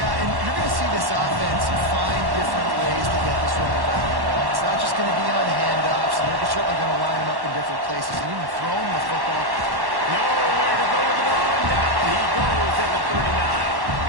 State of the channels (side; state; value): left; late; 1.1 ms